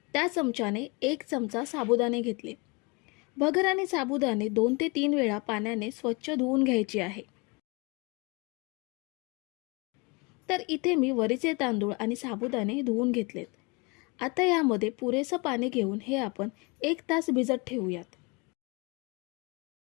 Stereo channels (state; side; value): quieter; right; 28.3 dB